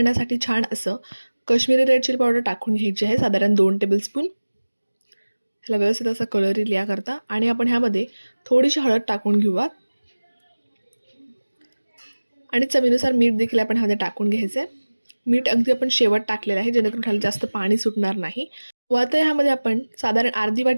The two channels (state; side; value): inverted; both; correlation -1.00